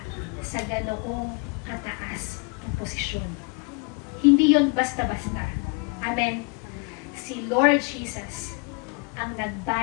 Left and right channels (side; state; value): right; quieter; 31.7 dB